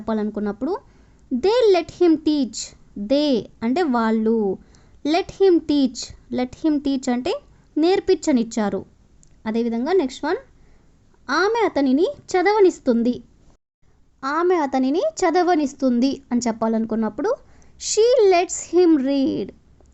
they let him teach. They అంటే వాళ్ళు, లెట్ హిమ్ టీచ్ అంటే నేర్పించనిచ్చారు. అదేవిధంగా నెక్స్ట్ వన్, ఆమె అతనిని చదవనిస్తుంది. ఆమె అతనిని చదవనిస్తుంది అని చెప్పాలనుకున్నప్పుడు she lets him read.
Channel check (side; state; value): both; identical; correlation 1.00